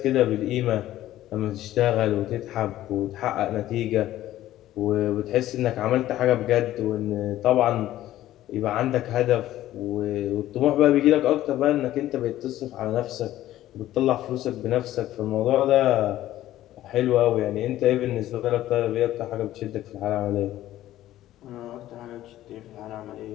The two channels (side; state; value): right; quieter; 14.0 dB